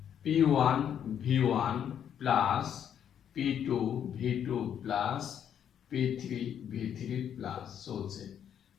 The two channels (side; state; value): right; quieter; 9.1 dB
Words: P1 V1 plus P2 V2 plus P3 V3 plus চলছে।